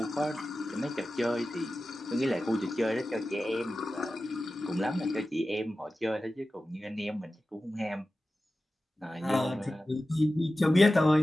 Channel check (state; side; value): normal; both; correlation 0.94